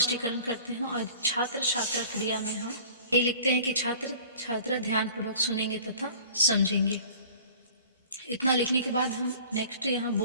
करते हैं, और छात्र छात्रा क्रिया में हम ये लिखते हैं कि छात्र छात्रा ध्यानपूर्वक सुनेंगे तथा समझेंगे। इतना लिखने के बाद हम नेक्स्ट यहाँ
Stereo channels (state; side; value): inverted; both; correlation -0.47